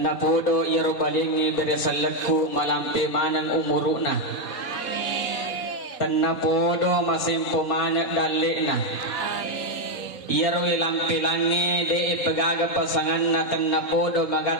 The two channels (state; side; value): late; right; 4.4 ms